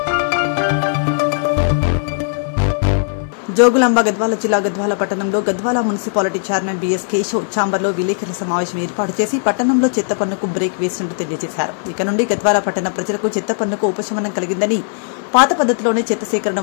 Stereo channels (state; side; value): silent; right; 60 dB below the other